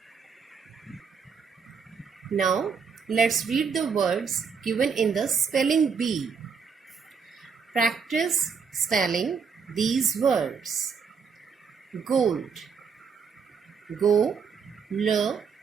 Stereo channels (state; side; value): quieter; left; 5.9 dB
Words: Now, let's read the words given in the spelling bee. Practice spelling these words. Gold. Go-l-d.